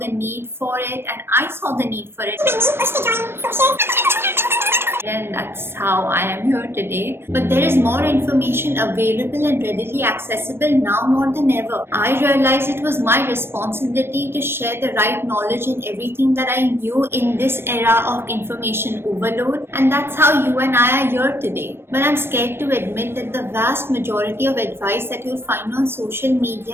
need for it and I saw the need for it. And that's how I am here today. But there is more information available and readily accessible now more than ever. I realized it was my responsibility to share the right knowledge and everything that I knew in this era of information overload, and that's how you and I are here today. But I'm scared to admit that the vast majority of advice that you'll find on social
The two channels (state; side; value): late; left; 0.12 ms